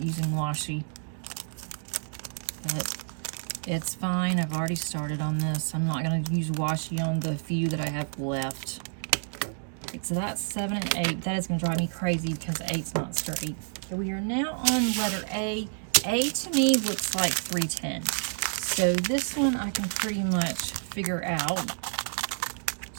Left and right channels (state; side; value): silent; left; 59 dB below the other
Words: using washi. But it's fine. I've already started on this. I'm not going to use washi on the few that I have left. Okay, so that's 7 and 8. That is going to drive me crazy because 8's not straight. Okay, we are now on letter A. A to me looks like 310. So this one I can pretty much figure out.